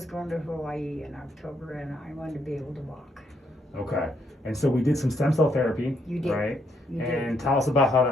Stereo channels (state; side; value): normal; both; correlation 0.75